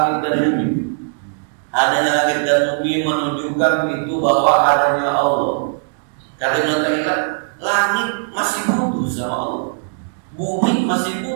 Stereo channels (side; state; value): left; silent; digital silence